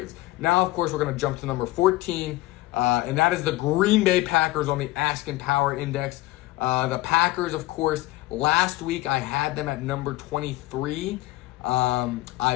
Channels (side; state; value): right; quieter; 18.1 dB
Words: Now, of course, we're going to jump to number 14, and that is the Green Bay Packers on the Askin Power Index. The Packers, of course, last week I had them at number 23.